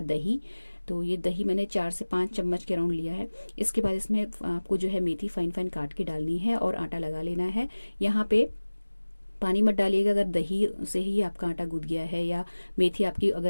दही। तो ये दही मैंने 4 से 5 चम्मच के राउंड लिया है। इसके बाद इसमें आपको जो है मेथी फाइन फाइन काट के डालनी है और आटा लगा लेना है। यहाँ पे पानी मत डालिएगा अगर दही से ही आपका आटा गूंथ गया है या मेथी आपकी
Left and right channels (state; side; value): inverted; both; correlation -1.00